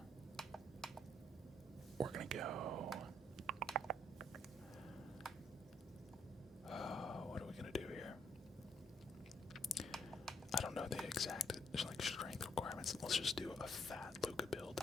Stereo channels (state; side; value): normal; both; correlation 0.72